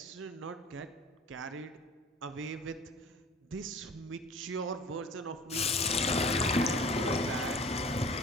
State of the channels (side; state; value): both; normal; correlation 0.43